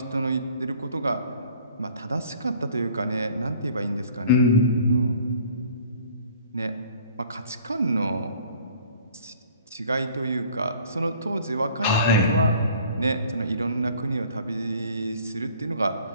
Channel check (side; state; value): both; inverted; correlation -0.52